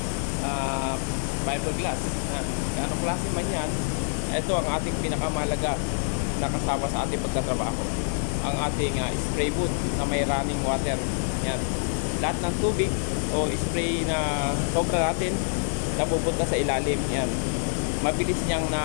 fiberglass. Anong klase man yan, ito ang ating pinakamahalaga na kasama sa ating pagtatrabaho, ang ating spray boot na may running water. Yan, lahat ng tubig o spray na sobra natin napupunta sa ilalim. Yan, mabilis niyang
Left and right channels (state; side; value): silent; right; digital silence